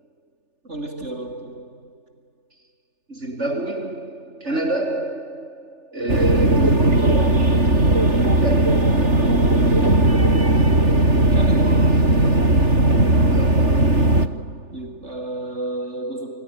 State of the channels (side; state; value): left; late; 3.4 ms